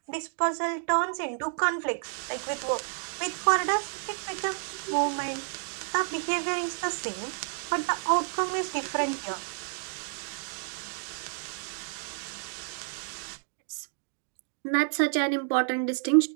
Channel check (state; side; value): silent; left; 58 dB below the other